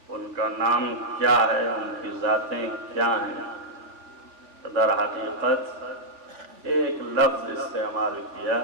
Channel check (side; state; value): left; late; 3.4 ms